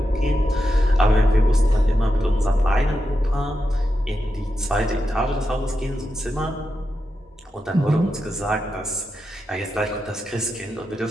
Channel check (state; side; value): normal; both; correlation 0.88